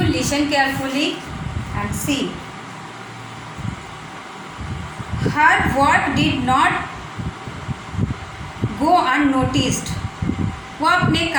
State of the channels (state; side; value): identical; both; correlation 1.00